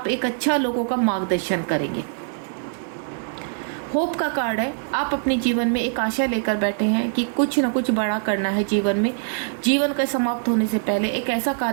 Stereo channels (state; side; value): silent; left; digital silence